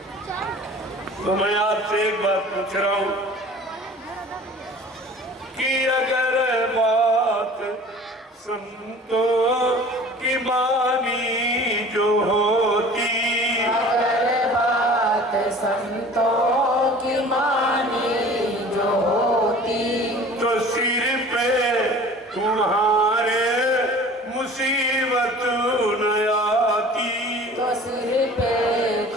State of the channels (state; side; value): normal; both; correlation 0.44